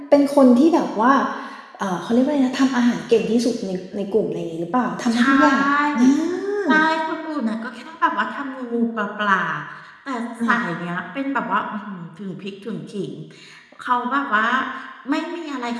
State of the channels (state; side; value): identical; both; correlation 1.00